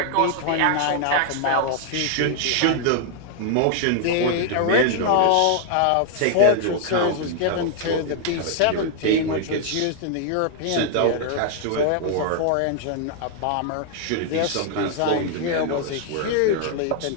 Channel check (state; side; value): different; both; correlation 0.00